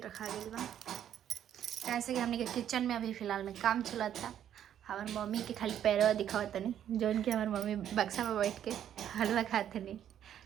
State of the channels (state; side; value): quieter; left; 10.2 dB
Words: गया बा, कैसे कि हमने के किचन में अभी फ़िलहाल में काम चला था। हमारे मम्मी के खाली पैरवा दिखावत नहीं, जो उनके हमारे मम्मी बक्सा में बैठ के हलवा खाते नहीं,